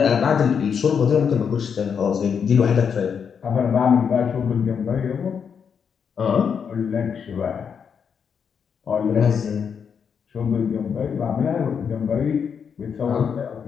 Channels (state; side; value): quieter; right; 6.9 dB